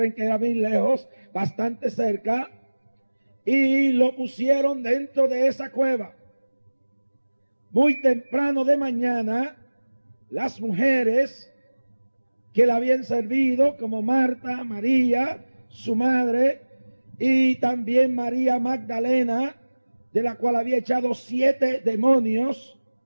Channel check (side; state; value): both; inverted; correlation -1.00